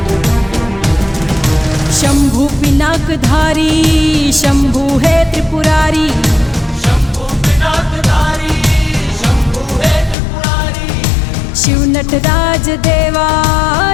शंभु पिनाकधारी, शंभु है त्रिपुरारी। शंभु पिनाकधारी, शंभु है त्रिपुरारी। शिव नटराज देवा,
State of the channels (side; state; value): right; drops out; at 10.2 s